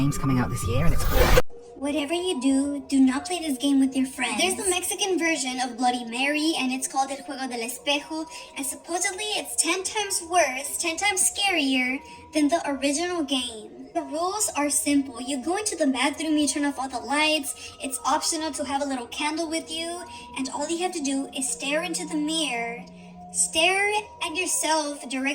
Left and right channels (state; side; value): identical; both; correlation 1.00